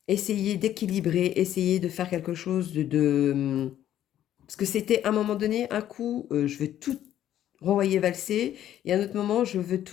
essayé d'équilibrer, essayé de faire quelque chose parce que c'était à un moment donné, un coup, je veux tout renvoyer valser, et à un autre moment, je veux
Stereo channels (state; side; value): quieter; right; 11.6 dB